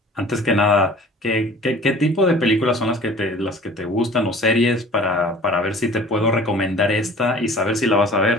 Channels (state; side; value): normal; both; correlation 0.46